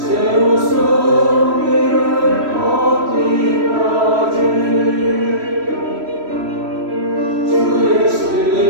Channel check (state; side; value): late; left; 3.1 ms